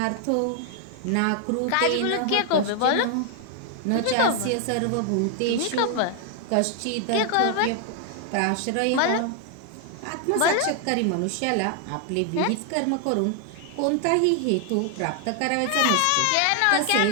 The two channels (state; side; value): different; both; correlation 0.00